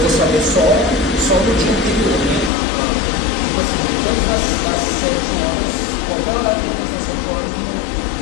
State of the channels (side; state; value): right; drops out; at 2.5 s